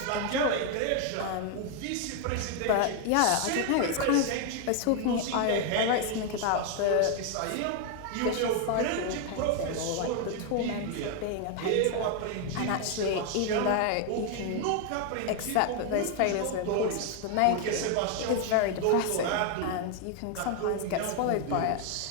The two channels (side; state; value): both; different; correlation 0.01